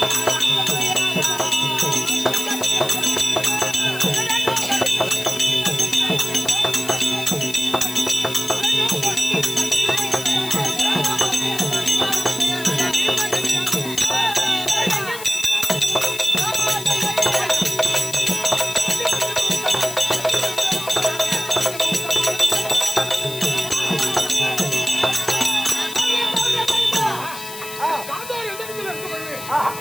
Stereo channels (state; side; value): noise; left; hiss, 12 dB below the sound